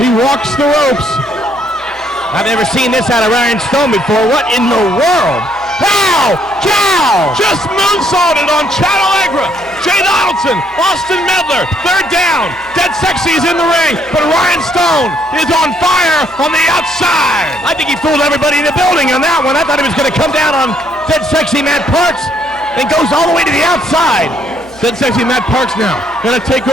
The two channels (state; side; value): normal; both; correlation 0.69